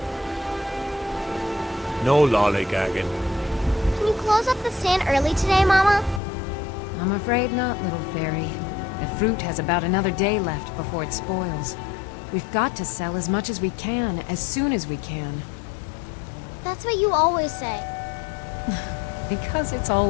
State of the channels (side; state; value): right; drops out; at 6.2 s